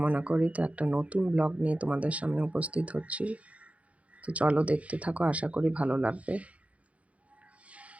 করি। তো একটা নতুন ব্লগ নিয়ে তোমাদের সামনে উপস্থিত হচ্ছি। তো চলো দেখতে থাকো, আশা করি ভালো লাগবে।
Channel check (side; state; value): left; late; 0.065 ms